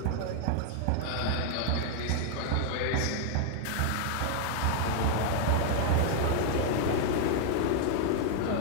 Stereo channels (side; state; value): both; different; correlation 0.00